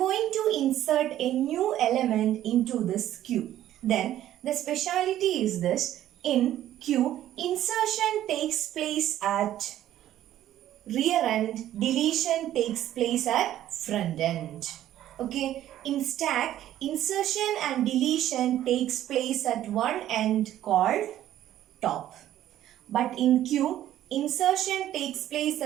to insert a new element into this Q. Then, the speciality is this. In Q, insertion takes place at rear end, deletion takes place at front end. Okay, in stack, insertion and deletion takes place at one end called top. But in Q, insertion takes place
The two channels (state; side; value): quieter; left; 12.5 dB